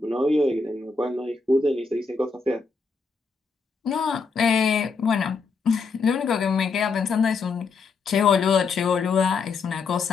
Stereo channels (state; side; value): quieter; right; 4.6 dB